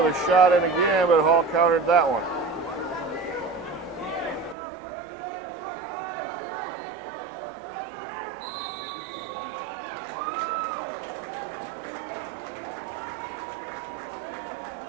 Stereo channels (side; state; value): left; drops out; at 4.5 s